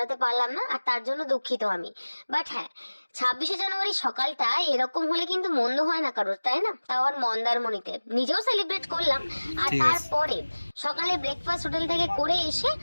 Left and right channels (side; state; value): both; inverted; correlation -1.00